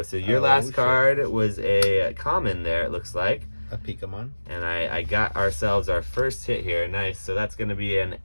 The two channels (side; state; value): both; inverted; correlation -1.00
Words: So your last card was a common there, it looks like. A Pokemon. And I got ourselves our first hit here. Nice. So that's going to be an